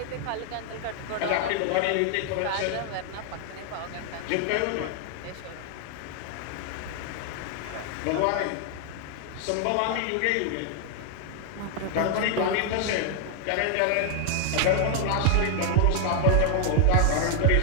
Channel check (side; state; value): both; different; correlation 0.00